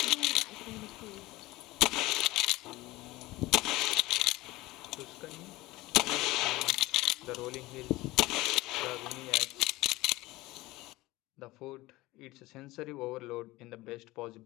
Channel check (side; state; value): right; quieter; 19.4 dB